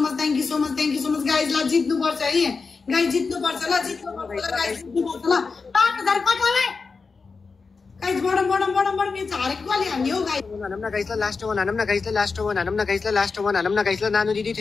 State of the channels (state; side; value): quieter; right; 4.6 dB